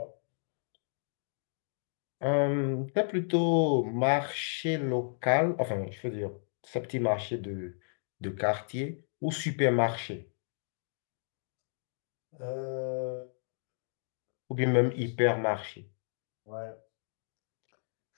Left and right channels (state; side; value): silent; right; digital silence